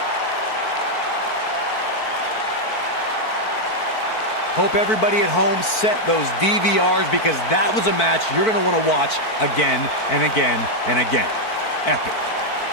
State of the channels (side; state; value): right; late; 4.5 ms